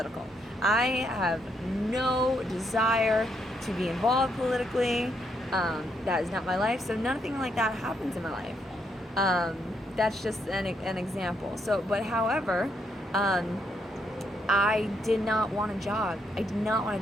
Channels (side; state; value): both; normal; correlation 0.76